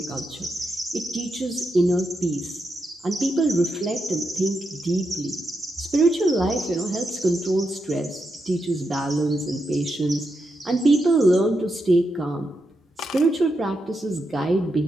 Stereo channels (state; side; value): normal; both; correlation 0.85